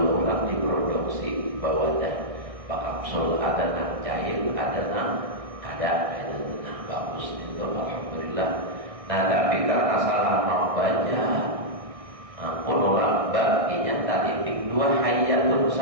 ulang, diproduksi bawadah kapsul, ada nak cair, ada nak bagus itu alhamdulillah. Nah tapi karena salah membaca ulama baginya titik 2 hayatun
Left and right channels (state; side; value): late; left; 1.6 ms